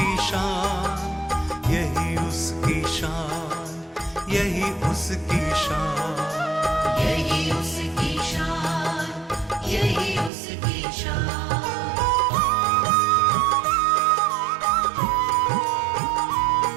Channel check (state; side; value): drops out; left; at 10.3 s